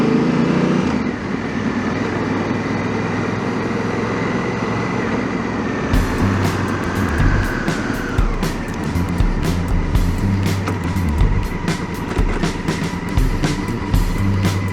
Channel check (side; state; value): both; identical; correlation 1.00